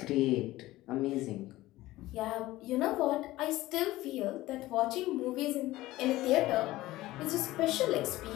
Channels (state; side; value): quieter; right; 17.2 dB